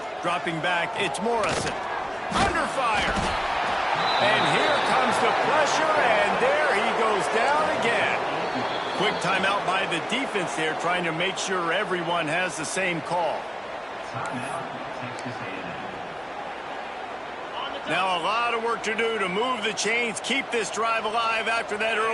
Dropping back, it's Morrison. Under fire. And here comes the pressure, and there he goes down again. Quick timeout by the defense there, trying to make sure everyone has the same call. Now a lot of work to do to move the chains, keep this drive alive after that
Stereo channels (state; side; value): identical; both; correlation 1.00